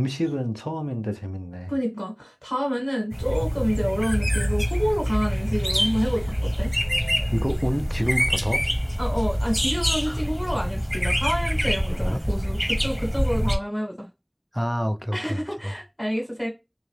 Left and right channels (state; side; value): identical; both; correlation 1.00